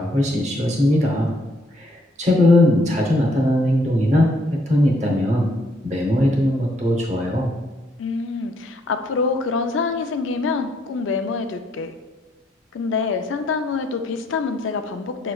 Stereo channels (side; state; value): both; normal; correlation 0.70